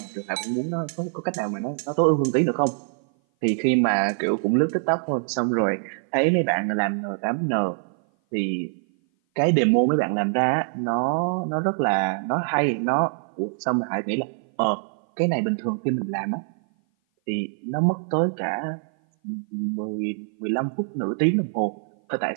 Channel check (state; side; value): silent; left; 57 dB below the other